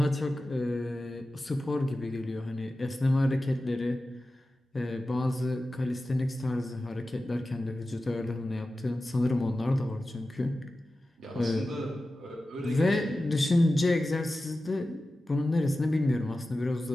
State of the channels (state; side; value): normal; both; correlation 0.94